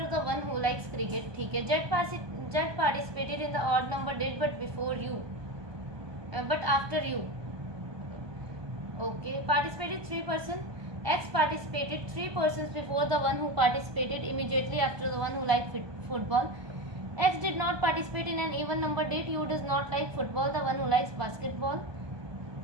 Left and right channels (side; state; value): left; late; 1.2 ms